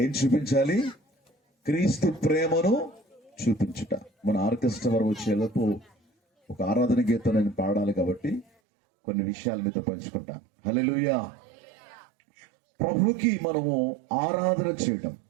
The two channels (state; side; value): drops out; left; at 8.5 s